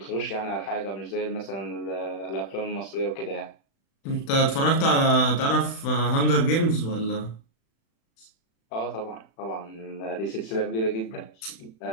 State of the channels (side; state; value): right; late; 36 ms